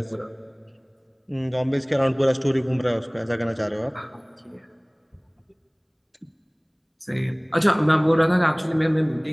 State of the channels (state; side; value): identical; both; correlation 1.00